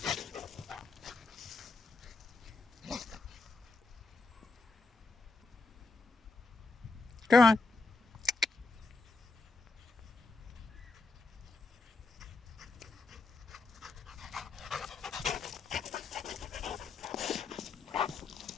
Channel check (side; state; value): right; quieter; 3.8 dB